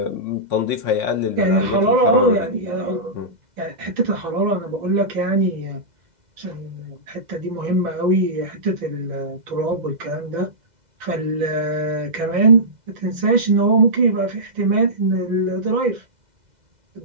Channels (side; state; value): left; late; 2.0 ms